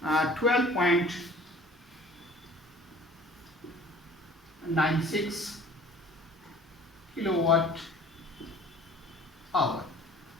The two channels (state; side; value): normal; both; correlation 0.49